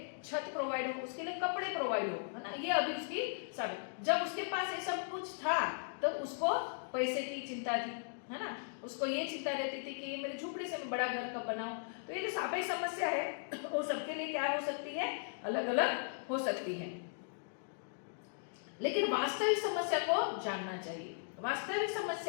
छत प्रोवाइड हो, उसके लिए कपड़े प्रोवाइड हो, है ना। ये अभी उसकी सापेक्ष। जब उसके पास ये सब कुछ था तो उसको पैसे की चिंता थी, है ना। उसको ये चिंता रहती थी कि मेरे झुपड़ी से मैं बड़ा घर कब बनाऊं। तो ये जो सापेक्ष समस्या है वो सबके लिए क्या हो सकती है? अलग अलग हो सकती है। लेकिन वास्तविक समस्या को जानना चाहिए। वास्तविक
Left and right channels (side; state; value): right; silent; digital silence